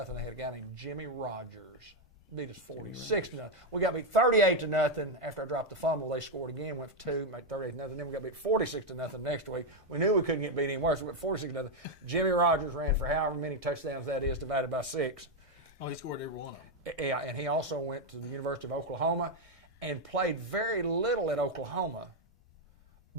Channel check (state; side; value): normal; both; correlation 0.03